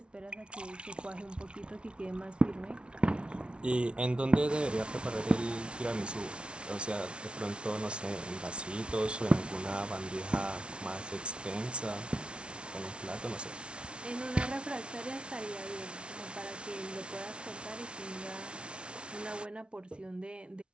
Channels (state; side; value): late; left; 0.058 ms